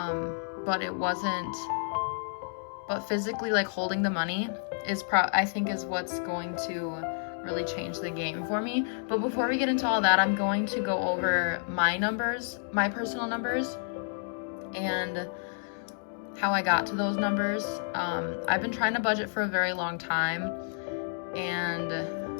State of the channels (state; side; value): silent; right; digital silence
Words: it wasn't, but physically like holding the money is I think is what's going to really change the game for me. But before we get into all that, I'm going to go over my numbers, my personal numbers, and how I got to those numbers. I've been trying to budget for a very long time, and